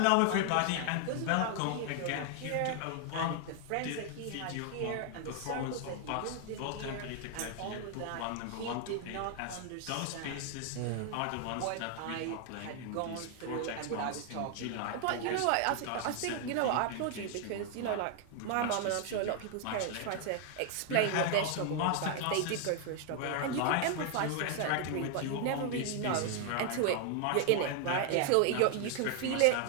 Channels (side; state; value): both; different; correlation 0.00